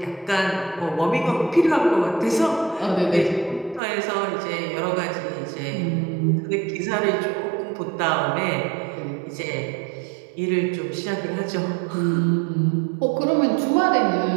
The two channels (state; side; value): drops out; left; at 3.8 s